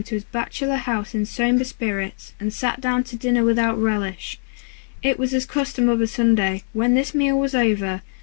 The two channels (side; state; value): right; silent; digital silence